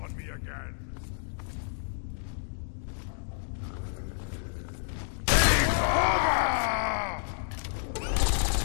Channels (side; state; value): right; silent; digital silence